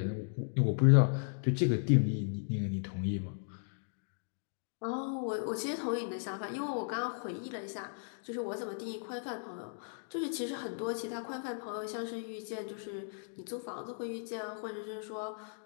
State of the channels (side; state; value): right; silent; digital silence